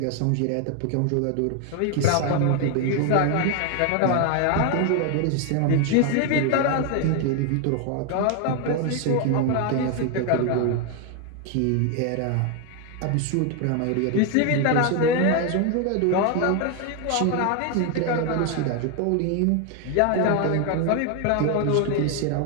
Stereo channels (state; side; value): different; both; correlation 0.01